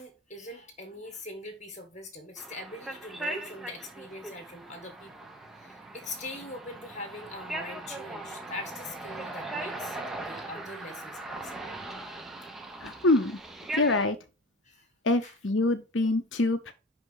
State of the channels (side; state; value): both; normal; correlation 0.34